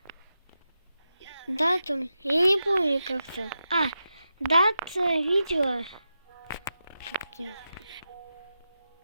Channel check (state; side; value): inverted; both; correlation -0.89